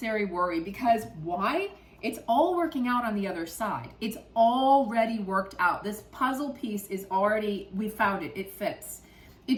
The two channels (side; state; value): both; identical; correlation 1.00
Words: worry, because why? It's all working out on the other side. It's already worked out. This puzzle piece is already, we found it, it fits.